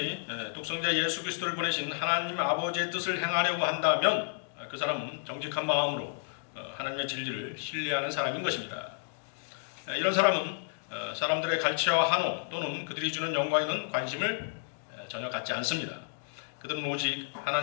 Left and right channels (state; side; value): silent; right; digital silence